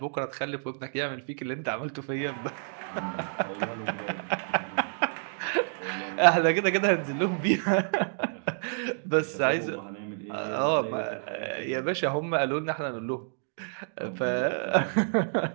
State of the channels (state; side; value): silent; left; digital silence